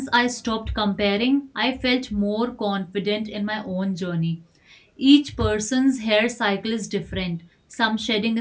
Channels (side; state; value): both; identical; correlation 1.00